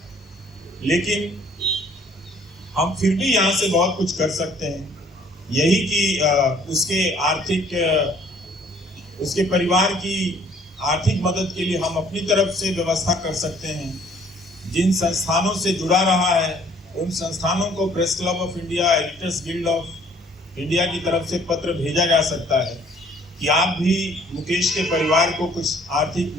लेकिन हम फिर भी यहाँ से बहुत कुछ कर सकते हैं, यही कि उसके परिवार की आर्थिक मदद के लिए हम अपनी तरफ से व्यवस्था कर सकते हैं। जिन संस्थानों से जुड़ा रहा है उन संस्थानों को press club of India, editors guild of India की तरफ से पत्र भेजा जा सकता है कि आप भी मुकेश के परिवार को कुछ आर्थिक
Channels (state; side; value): normal; both; correlation 0.59